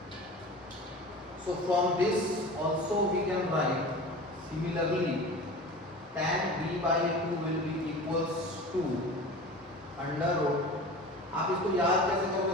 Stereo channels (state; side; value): normal; both; correlation 0.36